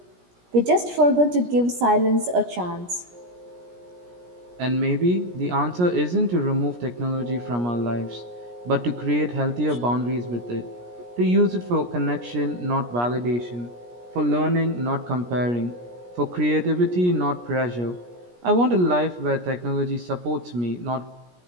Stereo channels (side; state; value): left; late; 17 ms